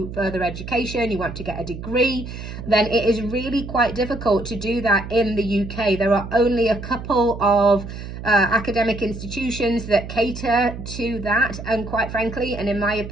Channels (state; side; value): noise; right; hum, 10 dB below the sound